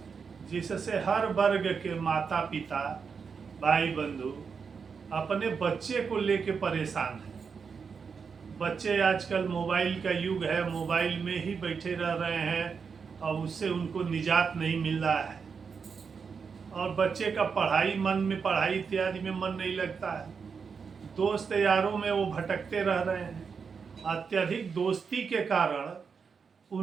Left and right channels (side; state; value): left; quieter; 5.8 dB